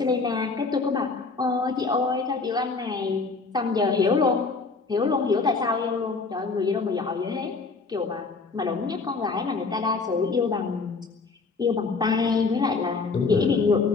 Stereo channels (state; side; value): quieter; right; 4.3 dB